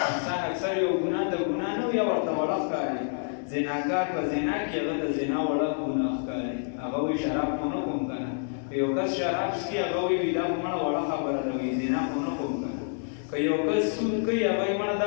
انسان اکثر یو ګناه د ګناه نه یا ورته وړه ښکاري. زناکار په زنا کې هغه د زنا وړه ګناه ښکاري. هغه وایي شراب خو نه کوم که نه. که یو کس شراب څکي هغه وایي دا خو مړه وړه خبره ده وایي زنا خو نه کوم که نه. که یو کس سود کوي هغه وایي مړه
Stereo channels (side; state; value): right; silent; digital silence